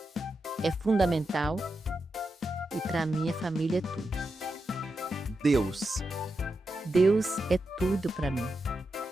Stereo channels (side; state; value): both; normal; correlation 0.88